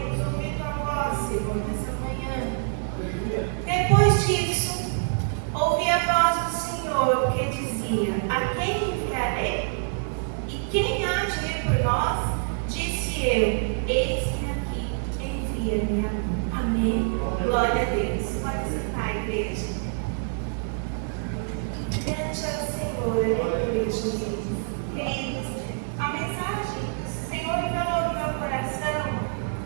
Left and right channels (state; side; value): silent; left; digital silence